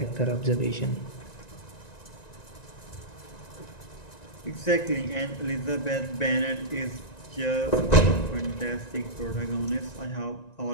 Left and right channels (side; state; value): right; late; 1.9 ms